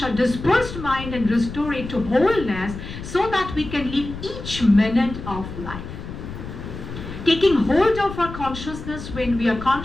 dispersed mind and restore it to wholeness, so that we can live each minute of life. Taking hold of our consciousness when we are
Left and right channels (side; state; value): left; noise; rumble, 10 dB below the sound